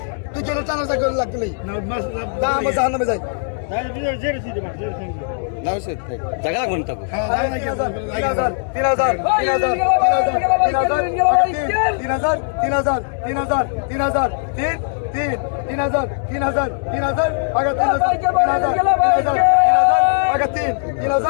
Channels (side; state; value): right; silent; digital silence